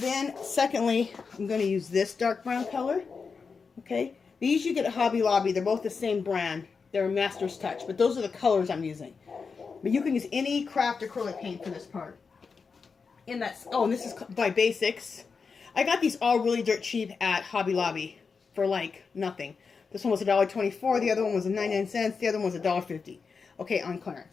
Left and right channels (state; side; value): quieter; right; 5.2 dB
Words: then secondly, I'm going to use this dark brown color, okay? These you get at Hobby Lobby. They're both the same brand. They're Master's Touch, but those are the colors I'm using. But you can use any craft acrylic paint for this part. And this is by Basics. I got these all really dirt cheap at Hobby Lobby for like nothing. This one was $1.24. The other one was 99 cents. The other one was $1.50. Okay, on